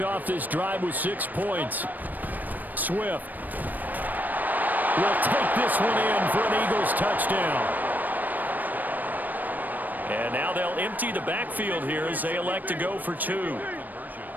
off this drive with 6 points. Swift will take this one in for an Eagles touchdown. And now they'll empty the backfield here as they elect to go for 2.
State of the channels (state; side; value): late; left; 0.086 ms